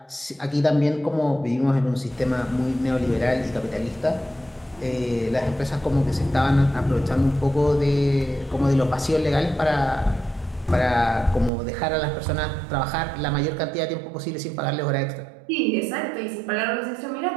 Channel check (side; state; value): left; drops out; at 11.5 s